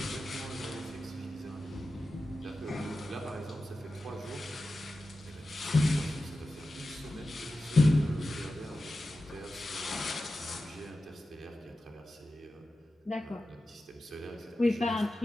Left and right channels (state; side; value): normal; both; correlation 0.93